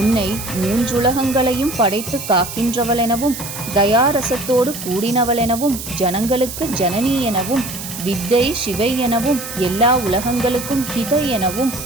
3 உலகங்களையும் படைத்து காக்கின்றவளெனவும் தயாரசத்தோடு கூடினவளெனவும் ஜனங்களுக்கு ஜனனி எனவும் வித்தை சிவை எனவும் எல்லா உலகங்களுக்கும் ஹிதை எனவும்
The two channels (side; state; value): right; noise; hiss, 9 dB below the sound